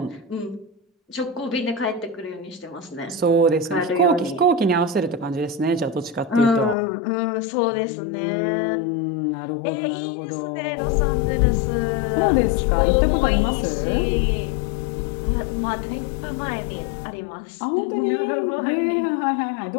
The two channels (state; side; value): drops out; right; at 6.8 s